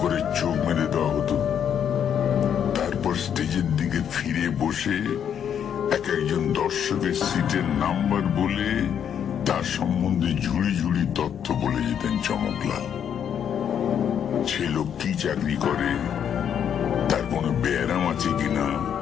করে চোখ মেরে দেওয়া হতো। তারপর স্টেজের দিকে ফিরে বসে এক একজন দর্শকের সিটের নাম্বার বলে তার সম্বন্ধে ঝুড়ি ঝুড়ি তথ্য বলে যেতেন চমকলাল। সে লোক কি চাকরি করে, তার কোনো ব্যারাম আছে কিনা,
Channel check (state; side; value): quieter; right; 8.7 dB